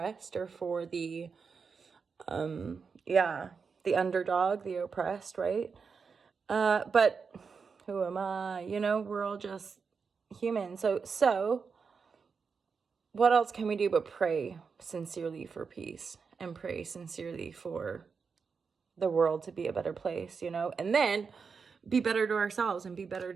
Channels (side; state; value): left; quieter; 5.5 dB